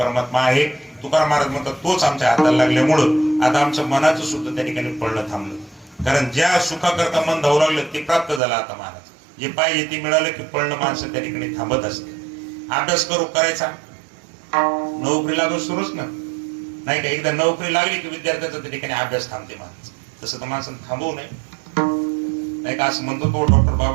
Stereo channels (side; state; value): left; drops out; at 8.4 s